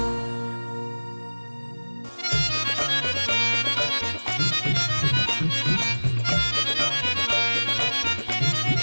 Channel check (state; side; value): inverted; both; correlation -1.00